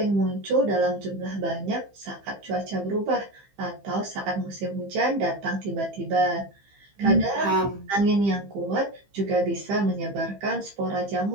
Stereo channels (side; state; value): left; late; 15 ms